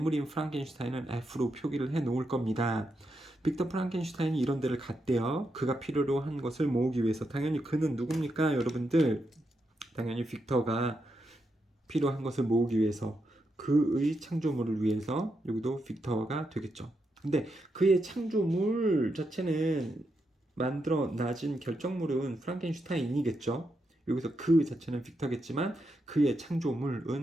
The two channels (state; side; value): normal; both; correlation 0.83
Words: 프랑켄슈타인은 F로 표기를 해 놓을 겁니다. 빅터 프랑켄슈타인이 이런 데를 갔대요. 그가 필요로 한 것을 모으기 위해서. 당연히 그는 누굽니까, 여러분들? 당연히 빅터가 필요한 것을 모으기 위해서, 그의 창조물을 위해서. 여기도 빅터가 되겠죠. 근데 그의 창조물 자체는 만들어 놔진 결정물은 프랑켄슈타인이겠죠. 여기서 그 자체는 빅터겠지만 그의